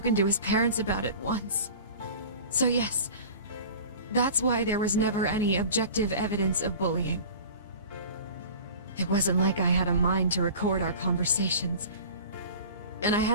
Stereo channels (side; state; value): both; inverted; correlation -0.39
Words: to his parents about it once. So yes, that's why there was never any objective evidence of bullying. It wasn't like I had a mind to record our conversations, and I